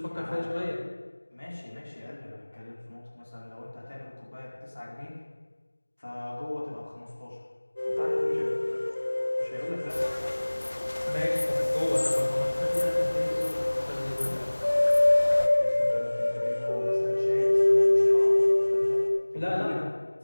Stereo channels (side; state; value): both; inverted; correlation -1.00